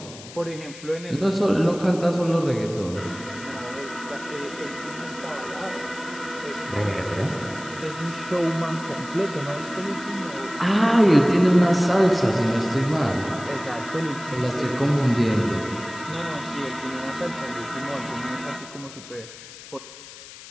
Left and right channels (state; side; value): noise; left; hiss, 16 dB below the sound